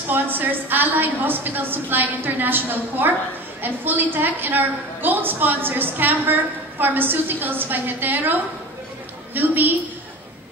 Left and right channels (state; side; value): normal; both; correlation 0.33